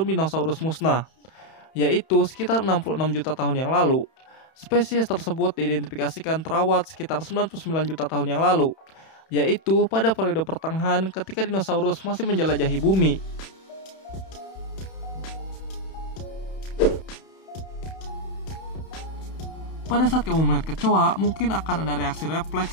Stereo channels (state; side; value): late; right; 31 ms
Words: dinosaurus musnah, yaitu sekitar 66 juta tahun yang lalu. Spesies tersebut diidentifikasikan terawat sekitar 99 juta tahun yang lalu, yaitu pada periode pertengahan ketika dinosaurus masih menjelajahi bumi. Pada saat kamu melihat kecoa, mungkin akan ada reaksi